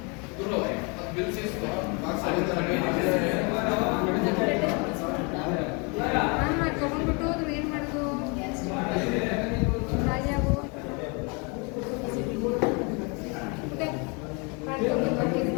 ತಗೊಂಡ್ಬಿಟ್ಟು ಅದು ಏನು ಮಾಡೋದು? ರಾಜಾವು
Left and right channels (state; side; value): quieter; right; 32.1 dB